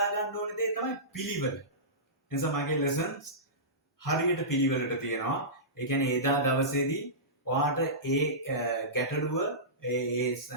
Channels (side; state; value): both; normal; correlation -0.19